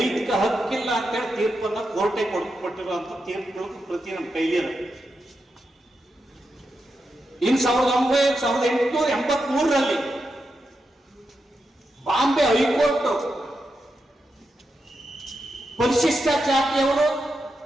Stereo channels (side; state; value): both; normal; correlation 0.87